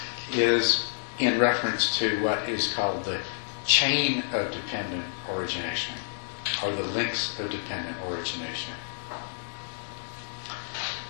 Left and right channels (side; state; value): right; silent; digital silence